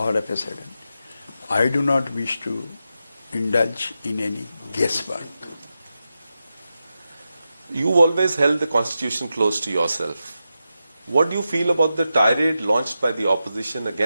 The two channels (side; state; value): both; inverted; correlation -0.89